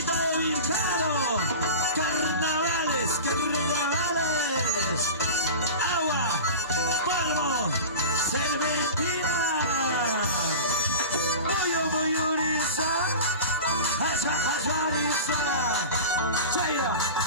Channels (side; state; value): both; inverted; correlation -0.31